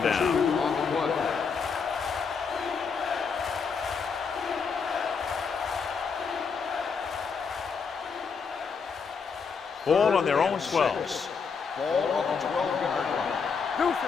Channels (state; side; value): quieter; right; 5.7 dB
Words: down. Ball on their own 12. Ball on the 12-yard line. Deuce